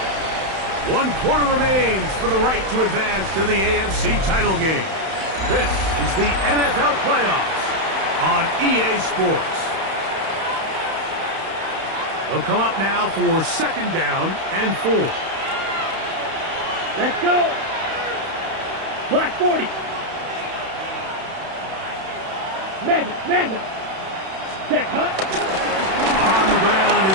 1 quarter remains for the right to advance to the AFC title game. This is the NFL playoffs on EA Sports. They'll come up now for second down and 4. Let's go. Black 40. Mega, mega. Check, hut. On the ground,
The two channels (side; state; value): left; late; 31 ms